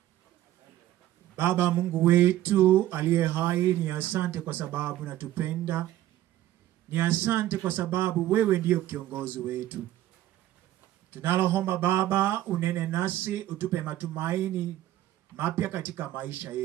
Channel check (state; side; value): quieter; left; 13.9 dB